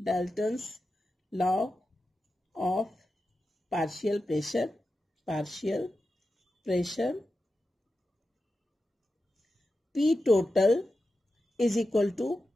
of partial pressure, P total is equal to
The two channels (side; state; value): both; normal; correlation 0.91